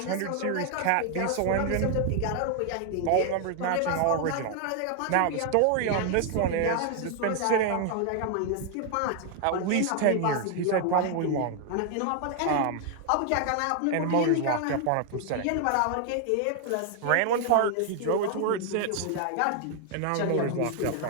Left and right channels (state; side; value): different; both; correlation 0.00